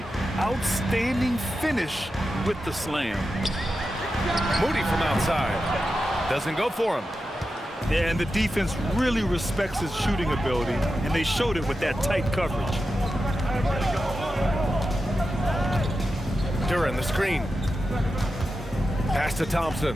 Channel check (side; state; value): both; normal; correlation 0.90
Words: Outstanding finish with the slam. Moody from outside. Doesn't go for him. Yeah, and the defense really respects his shooting ability, and they showed it with that tight coverage. Duren, the screen. Pass to Thompson.